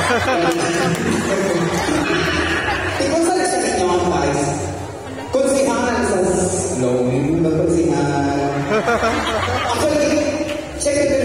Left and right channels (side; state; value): both; identical; correlation 1.00